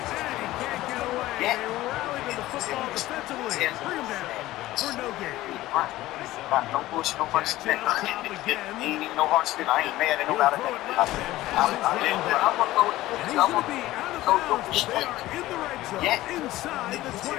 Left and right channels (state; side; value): quieter; right; 16.5 dB